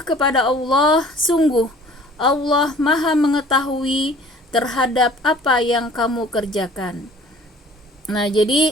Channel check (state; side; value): normal; both; correlation 0.50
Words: kepada Allah, sungguh Allah Maha mengetahui terhadap apa yang kamu kerjakan. Nah,